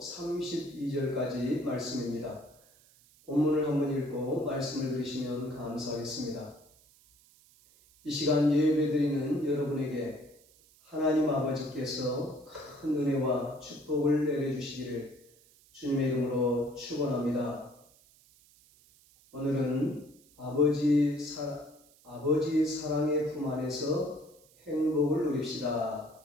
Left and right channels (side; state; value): right; noise; hiss, 28 dB below the sound